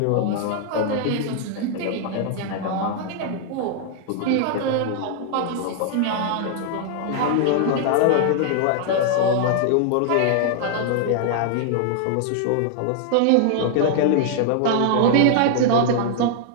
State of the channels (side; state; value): both; different; correlation -0.01